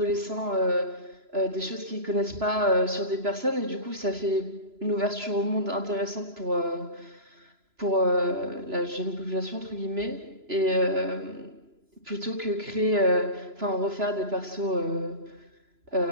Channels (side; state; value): left; late; 3.0 ms